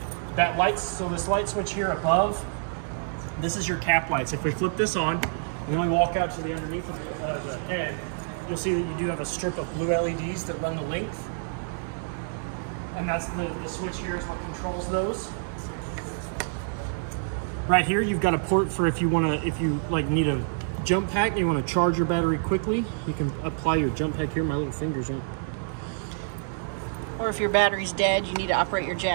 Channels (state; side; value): silent; left; 60 dB below the other